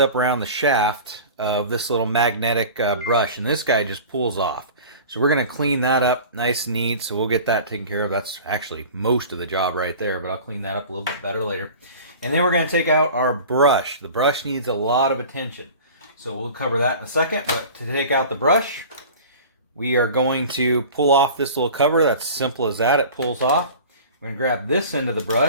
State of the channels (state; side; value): inverted; both; correlation -0.39